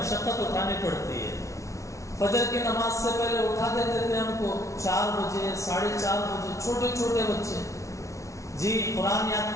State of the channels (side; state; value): right; late; 0.15 ms